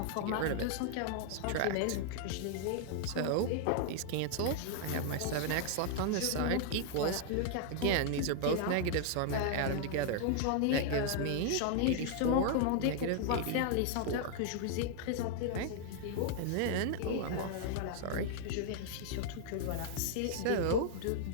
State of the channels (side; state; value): both; different; correlation 0.00